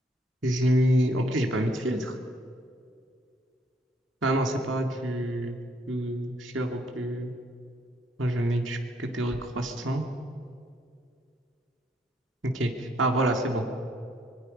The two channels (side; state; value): both; normal; correlation 0.70